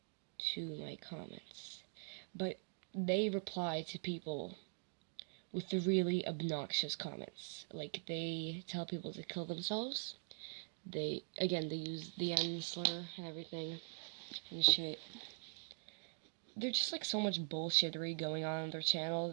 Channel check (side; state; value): left; silent; digital silence